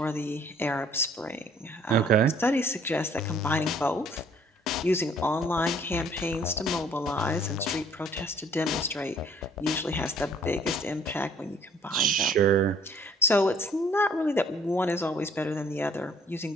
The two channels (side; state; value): both; normal; correlation 0.59